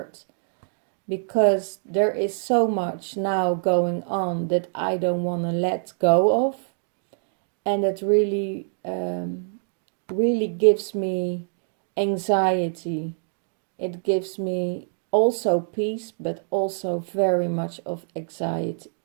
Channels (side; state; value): left; silent; digital silence